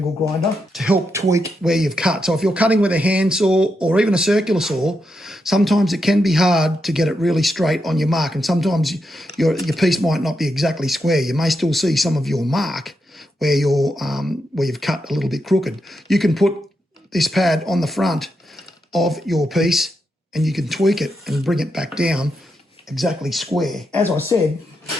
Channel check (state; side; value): normal; both; correlation 0.84